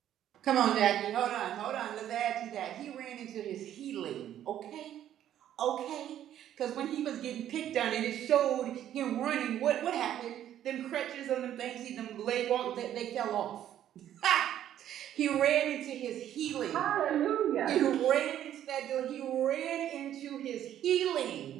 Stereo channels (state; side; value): quieter; left; 11.2 dB